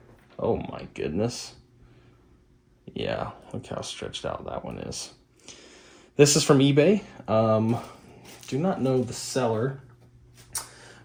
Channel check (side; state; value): both; identical; correlation 1.00